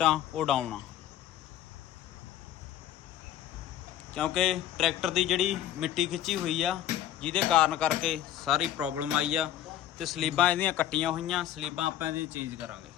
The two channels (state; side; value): quieter; right; 11.7 dB